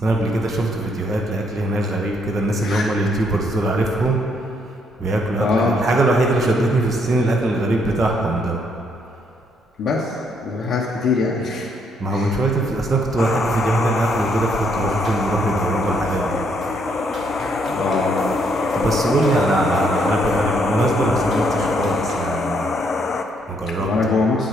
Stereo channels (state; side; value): normal; both; correlation 0.72